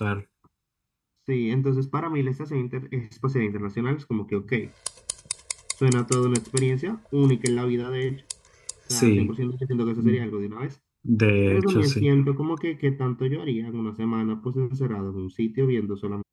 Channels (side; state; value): both; identical; correlation 1.00